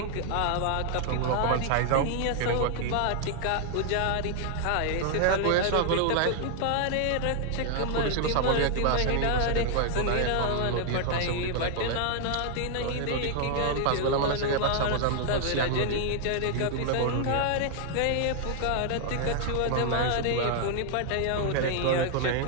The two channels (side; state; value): both; different; correlation 0.00